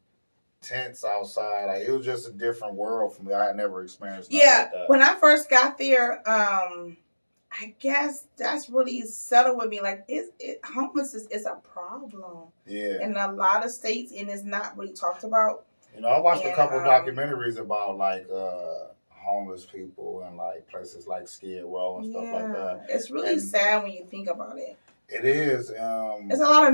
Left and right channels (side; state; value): both; inverted; correlation -1.00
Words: tents outside. Like it was just a different world for me. I had never experienced. Like that. When I first got there, I guess that's really settled with me. Like, homelessness is a problem. Yeah. In a lot of states, and it's not really talked about. I watched a couple documentaries about like homeless people and like places like Skid Row and stuff like that. It's really sad when you think about it. It is. It's a lot